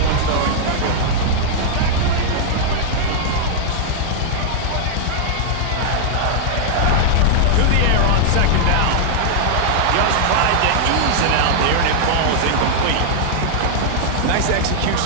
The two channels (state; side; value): different; both; correlation -0.01